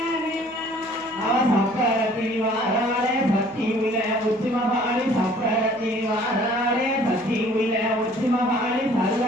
சப்பரத்தில் வாராளே சக்தி உள்ள உச்சிமகாளி சப்பரத்தில் வாராளே சக்தி உள்ள உச்சிமகாளி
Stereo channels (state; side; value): noise; right; hum, 29 dB below the sound